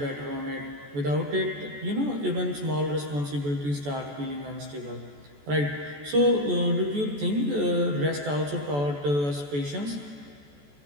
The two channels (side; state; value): left; late; 14 ms